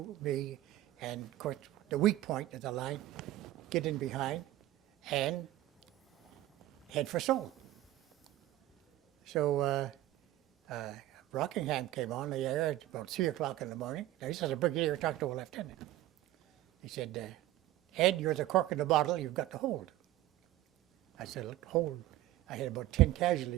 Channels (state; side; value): quieter; left; 15.2 dB